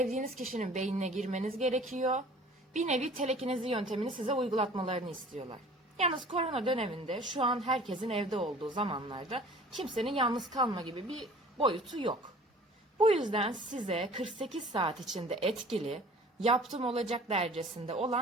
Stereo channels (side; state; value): both; normal; correlation 0.47